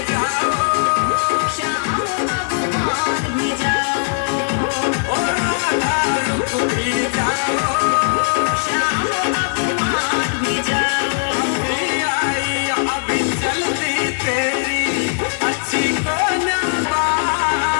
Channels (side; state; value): right; silent; digital silence